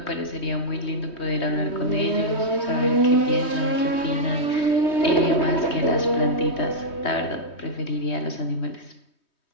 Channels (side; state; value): right; late; 3.2 ms